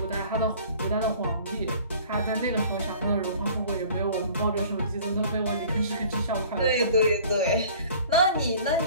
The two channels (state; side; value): inverted; both; correlation -0.49